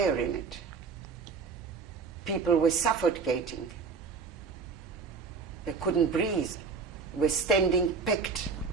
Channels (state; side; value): quieter; left; 5.0 dB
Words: in it. People were suffocating. They couldn't breathe. Were standing packed,